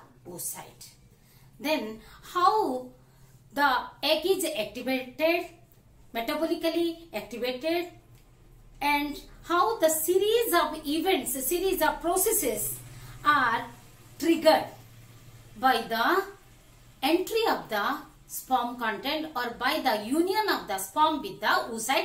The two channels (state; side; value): identical; both; correlation 1.00